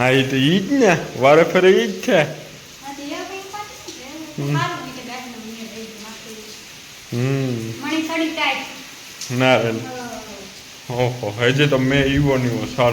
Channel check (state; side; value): identical; both; correlation 1.00